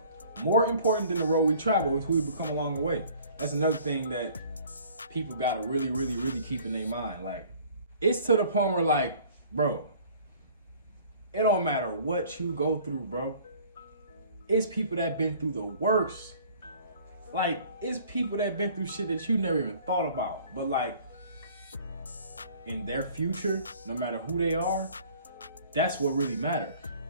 More important than the road we travel is who we become along the way. That's another thing that people gotta really, really, really keep in their mind. Like, it's to the point where, like, bro, it don't matter what you go through, bro. It's people that been through the worst. Like, it's people that been through shit that you never even thought about. But, like, in their future, no matter who they are, that's what really matters.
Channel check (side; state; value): both; inverted; correlation -0.52